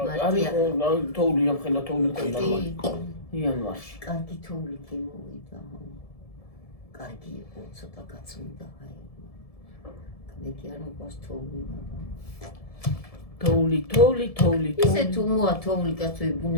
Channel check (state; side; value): late; right; 1.7 ms